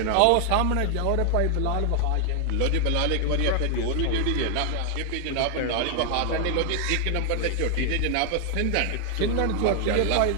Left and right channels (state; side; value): different; both; correlation 0.00